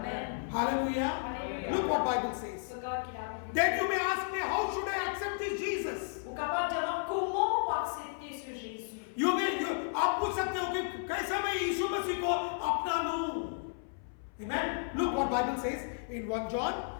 Hallelujah. Hallelujah. Look what Bible says. Regarde qu'il a dit. Then you may ask me, how should I accept this Jesus? Vous capable de demander comment on va accepter ce Jésus. आप पूछ सकते हो कि कैसे मैं यीशु मसीह को अपना लूं? Amen. Look what Bible says in 1 John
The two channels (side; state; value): right; silent; 56 dB below the other